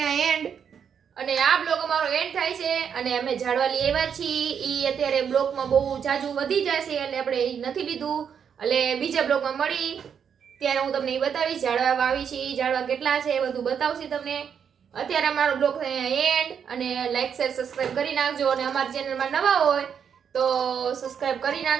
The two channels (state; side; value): quieter; left; 7.5 dB